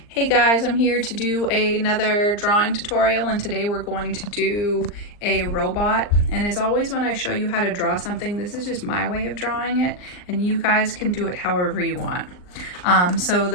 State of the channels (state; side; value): late; right; 39 ms